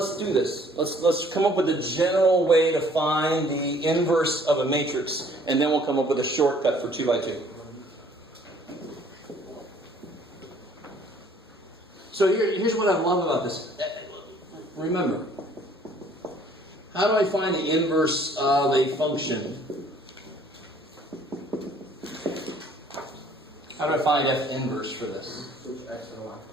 do this. Let's come up with a general way to find the inverse of a matrix, and then we'll come up with a shortcut for 2 by 2. So here's what I love about this. Remember, how do I find the inverse of a function? How do I find f inverse for this? Switch x and y.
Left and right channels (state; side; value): normal; both; correlation 0.58